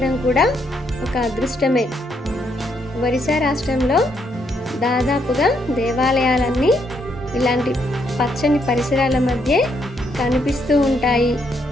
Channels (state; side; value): normal; both; correlation 0.75